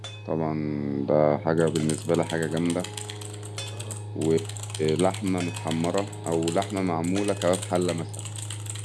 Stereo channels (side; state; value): both; identical; correlation 1.00